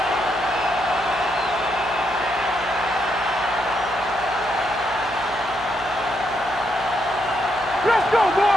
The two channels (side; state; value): right; noise; hum, 19 dB below the sound